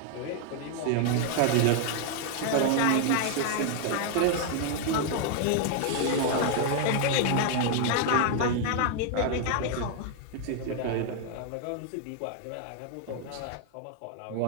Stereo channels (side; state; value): both; different; correlation 0.00